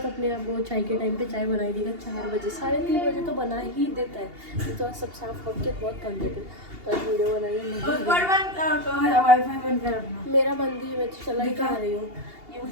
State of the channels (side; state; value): left; late; 2.8 ms